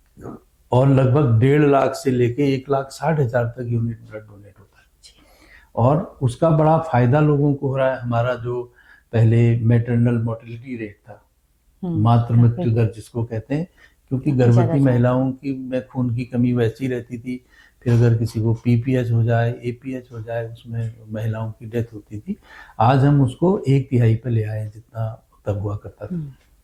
और लगभग 1.5 लाख से लेके 1,60,000 तक यूनिट ब्लड डोनेट होता है। और उसका बड़ा फायदा लोगों को हो रहा है। हमारा जो पहले मैटरनल मोर्टेलिटी रेट था, मातृ मृत्यु दर जिसको कहते हैं, क्योंकि गर्भवती महिलाओं की में खून की कमी वैसी रहती थी, फिर अगर किसी को पीपीएच हो जाए, एपीएच हो जाए, उसमें महिलाओं की डेथ होती थी। आज हम उसको 1/3 पे ले आए, जितना तब हुआ करता था।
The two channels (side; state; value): both; identical; correlation 1.00